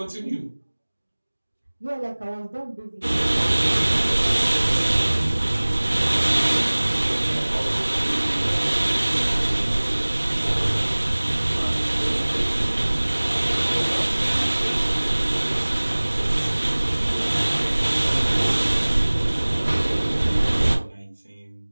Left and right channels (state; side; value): inverted; both; correlation -1.00